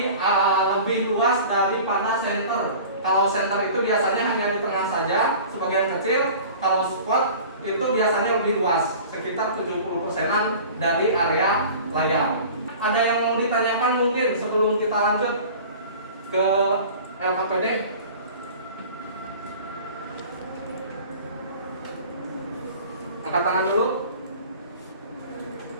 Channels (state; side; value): inverted; both; correlation -0.42